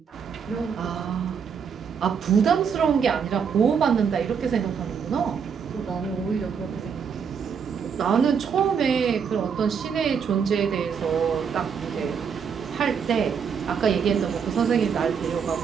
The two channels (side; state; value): left; quieter; 6.7 dB